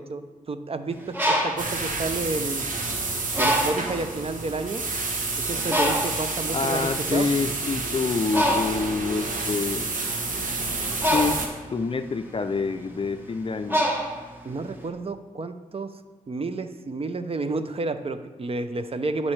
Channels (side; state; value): both; normal; correlation 0.50